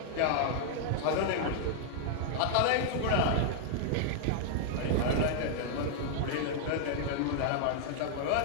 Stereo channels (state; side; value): different; both; correlation -0.01